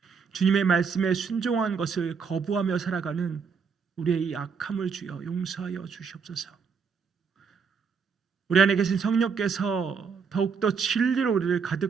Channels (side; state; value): left; quieter; 5.8 dB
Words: 주님의 말씀에 순종한 것을 거부하며 살아가는 우리의 이 악함을 주여 용서하여 주시옵소서. 우리 안에 계신 성령께서 더욱더 진리로 우리를